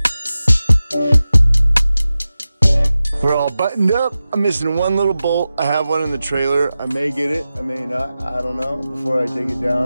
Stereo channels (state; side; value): inverted; both; correlation -0.94